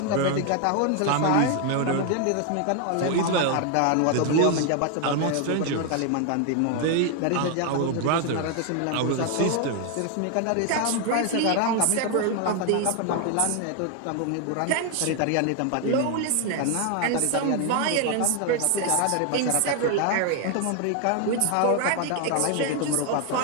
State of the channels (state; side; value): different; both; correlation 0.00